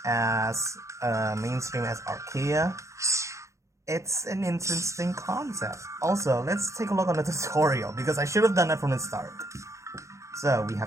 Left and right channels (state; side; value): late; left; 0.15 ms